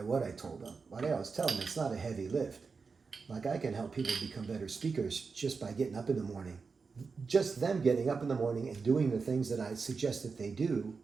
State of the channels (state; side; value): quieter; left; 4.8 dB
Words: what I told them. But I always tell them it's not a heavy lift. Like, I can help people become better speakers just by getting up in the morning. Just them getting up in the morning and doing the things that I suggest that they do